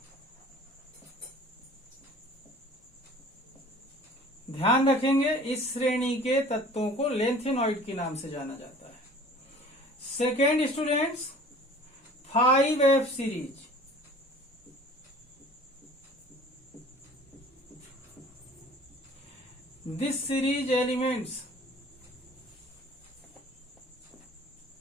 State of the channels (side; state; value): both; normal; correlation 0.47